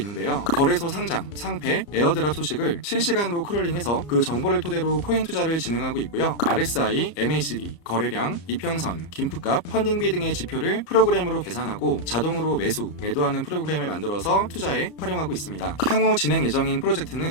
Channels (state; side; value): late; right; 34 ms